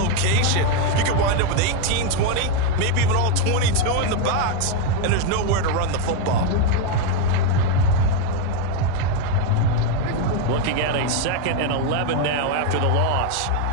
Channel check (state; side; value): different; both; correlation 0.02